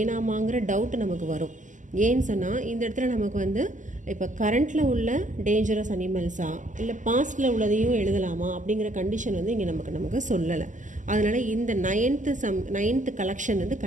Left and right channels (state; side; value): late; left; 0.37 ms